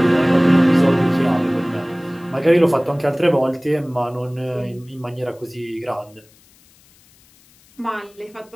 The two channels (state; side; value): noise; left; hiss, 30 dB below the sound